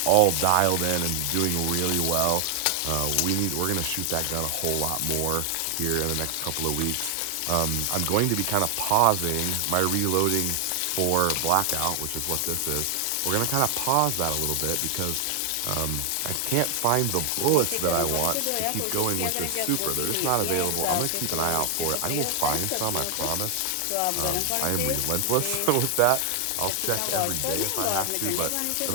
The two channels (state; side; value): different; both; correlation 0.00